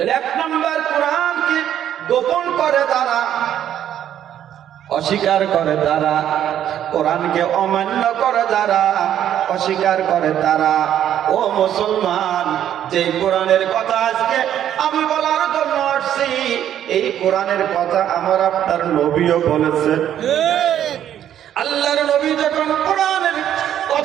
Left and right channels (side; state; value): left; quieter; 10.6 dB